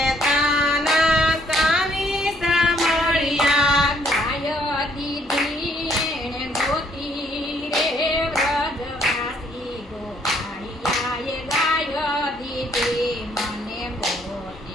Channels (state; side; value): normal; both; correlation 0.66